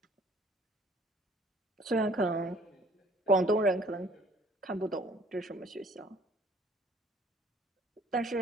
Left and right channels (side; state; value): both; normal; correlation 0.56